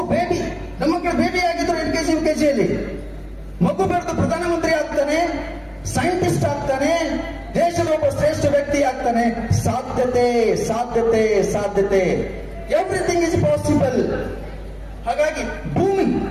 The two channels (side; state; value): both; identical; correlation 1.00